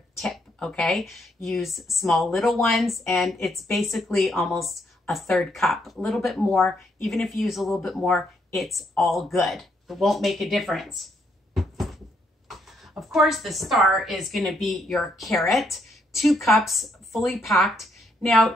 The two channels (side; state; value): both; normal; correlation 0.74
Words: tip, okay? Use small little ones, and it's basically almost a 1/3 cup, a little bit more. Even if you use a little bit more, it's all good. It won't make a difference. Of course, the star is gonna be your carrot, 2 cups fully packed. Now